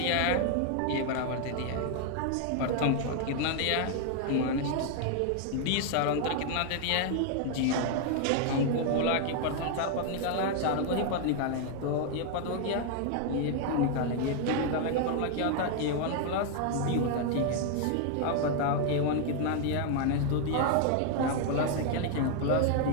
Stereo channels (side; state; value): both; different; correlation 0.00